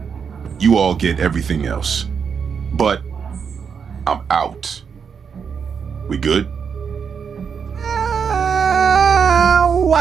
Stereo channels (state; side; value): quieter; left; 6.5 dB